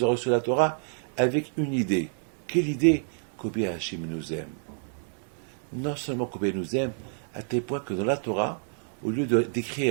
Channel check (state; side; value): silent; left; digital silence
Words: ont reçu la Torah, avec une idée. Quelle idée? Combien Hachem nous aime. Non seulement combien il nous aime, à tel point que dans la Torah, au lieu